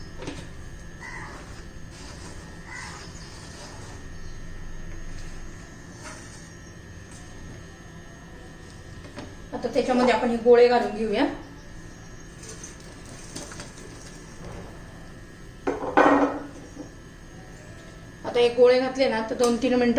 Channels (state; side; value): identical; both; correlation 1.00